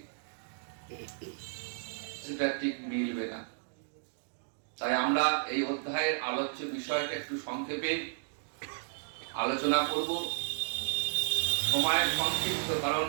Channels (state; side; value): silent; left; digital silence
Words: সেটা ঠিক মিলবে না। তাই আমরা এই অধ্যায়ের আলোচ্য বিষয়টা একটু সংক্ষেপে আলোচনা করব। সময়ের সংক্ষিপ্ত, কারণ